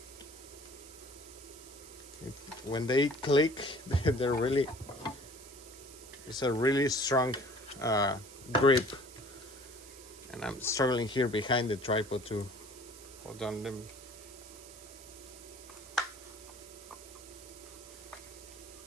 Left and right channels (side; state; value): right; noise; hiss, 17 dB below the sound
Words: When they click, they're really, it's a really strong grip. And I'm struggling here behind the tripod to hold on them.